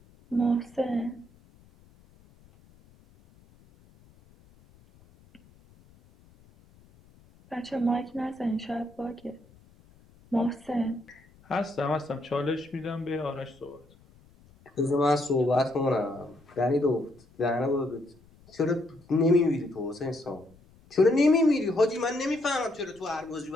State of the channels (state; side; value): noise; left; rumble, 28 dB below the sound